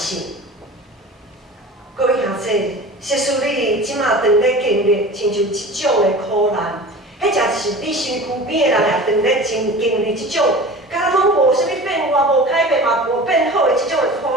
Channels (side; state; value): both; normal; correlation 0.37